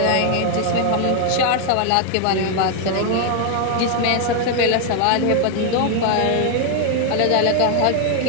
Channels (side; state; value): both; different; correlation 0.00